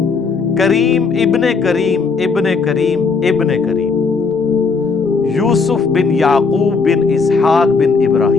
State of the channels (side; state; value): right; quieter; 4.8 dB